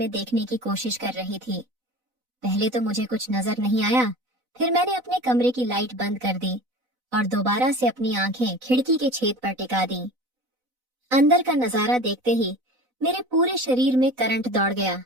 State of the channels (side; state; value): left; late; 4.0 ms